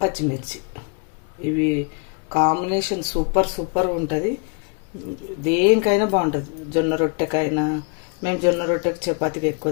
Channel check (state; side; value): quieter; right; 35.3 dB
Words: పచ్చిమిర్చి, ఇవి కాంబినేషన్ సూపర్ ఉంటుంది. దేనికైనా బాగుంటుంది. జొన్న రొట్టెకైనా, మేము జొన్న రొట్టెకి చపాతీకి ఎక్కువ